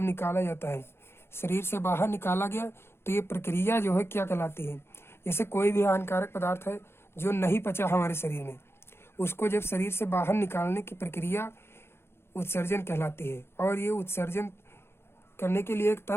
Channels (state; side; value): late; right; 0.12 ms